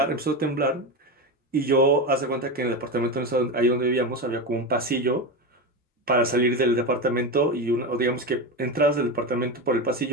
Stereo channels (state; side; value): normal; both; correlation 0.18